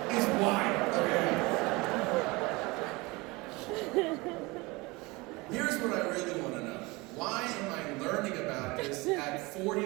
is wild, okay? Here's what I really want to know. Why am I learning about this at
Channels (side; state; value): left; quieter; 24.0 dB